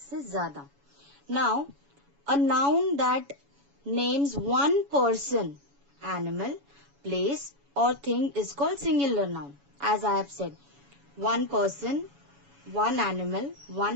ज़्यादा. Now, a noun that names one person, animal, place or thing is called singular noun. As I have said, one person, one animal,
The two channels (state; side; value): late; left; 7.1 ms